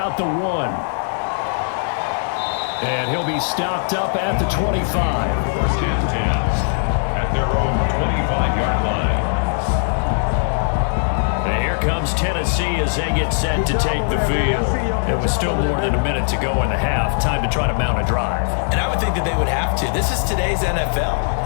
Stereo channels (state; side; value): silent; right; 66 dB below the other